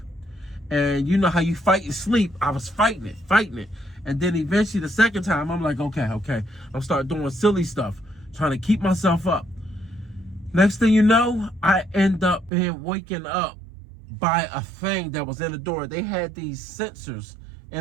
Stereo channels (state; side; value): drops out; left; at 12.5 s